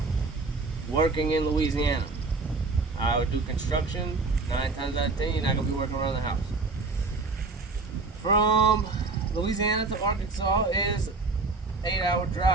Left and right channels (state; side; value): quieter; left; 3.8 dB